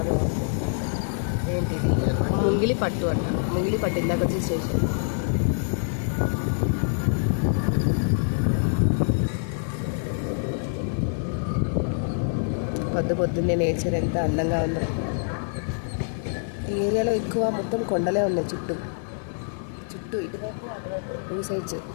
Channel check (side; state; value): right; silent; digital silence